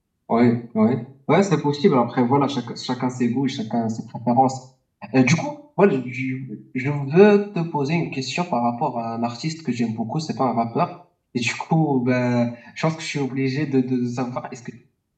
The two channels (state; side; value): identical; both; correlation 1.00